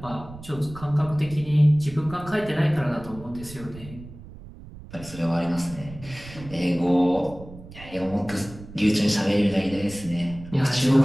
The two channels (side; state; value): right; noise; rumble, 16 dB below the sound